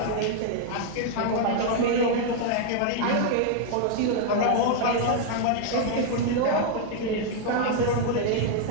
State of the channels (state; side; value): different; both; correlation 0.00